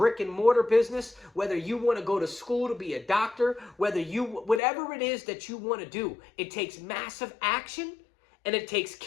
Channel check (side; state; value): right; drops out; at 4.6 s